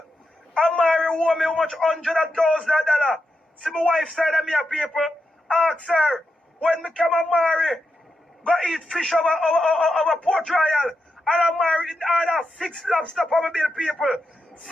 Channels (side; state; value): both; normal; correlation 0.86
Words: Amari owe me how much $100,000. See my wife side of me people. Ask her, when me come Amari, go eat fish over Port Royal. And Amari in order 6 lobster for my bill people.